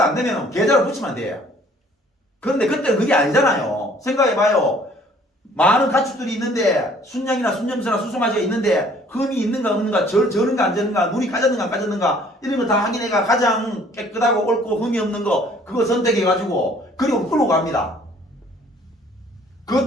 안 되면 계좌를 붙이면 돼. 그런데 그때는 그게 아니잖아요. 생각해봐요. 많은 가축들이 있는데 순양이나 순염소나 수송아지가 있는데 흠이 있는가 없는가 저는가 안 저는가 눈이 까졌는가 안 까졌는가 이런 거 다 확인해가 가장 깨끗하고 옳고 흠이 없는 거 그거 선택해가지고 그리고 끌고 갑니다.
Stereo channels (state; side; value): normal; both; correlation 0.57